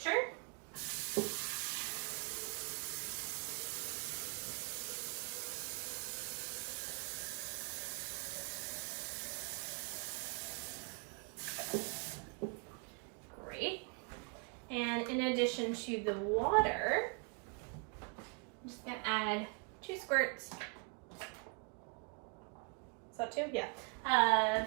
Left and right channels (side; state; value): left; quieter; 36.0 dB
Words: And in addition to the water, I'm just gonna add 2 squirts. Is that 2? Yeah.